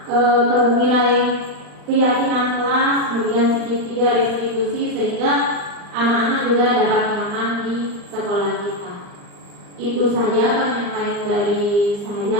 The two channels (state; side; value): late; left; 39 ms